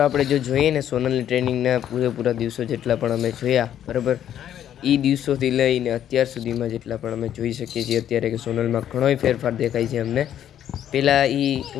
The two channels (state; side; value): quieter; right; 10.6 dB